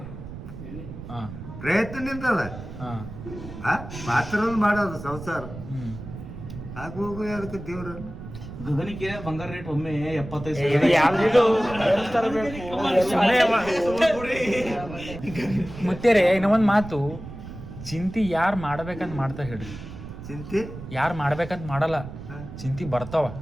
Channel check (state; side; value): noise; right; rumble, 12 dB below the sound